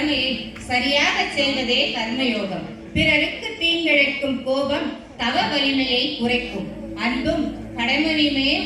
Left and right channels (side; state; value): both; identical; correlation 1.00